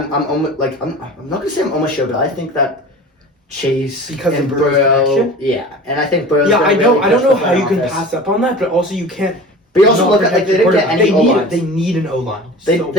almost I'm not gonna say I'm almost sure, but I think that Chase Because and of Burrow's Burrow. connection? Yeah, and I think Burrow's. Yeah, gonna I don't really know push the how you can offense. pass up on that, but also you can't. But you also not look at like protect they your didn't get quarterback. any O-lines. They need an O-line. They So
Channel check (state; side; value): normal; both; correlation 0.37